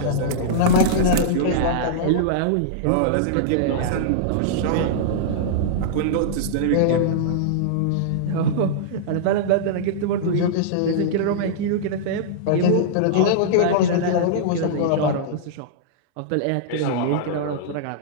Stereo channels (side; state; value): both; different; correlation -0.02